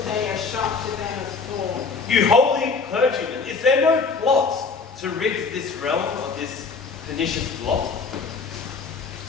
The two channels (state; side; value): quieter; right; 4.7 dB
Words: day as sharp to them as thorn. You holy clergymen, is there no plot to rid this realm of this pernicious blot?